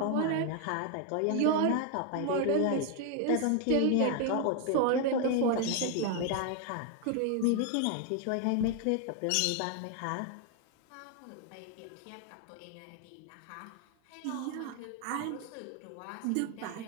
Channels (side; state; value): both; different; correlation 0.00